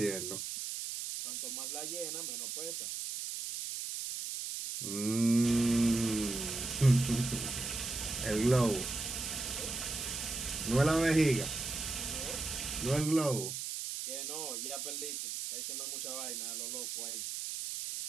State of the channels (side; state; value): right; noise; hiss, 4 dB below the sound